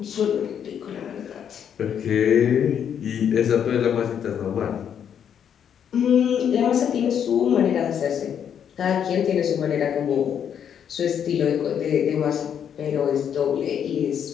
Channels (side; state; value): right; quieter; 8.5 dB